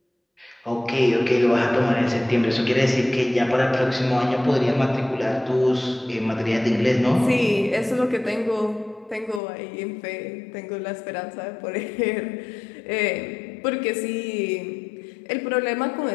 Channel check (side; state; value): right; drops out; at 9.4 s